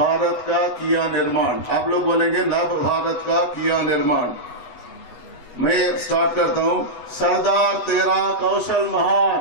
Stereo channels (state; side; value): late; right; 8.0 ms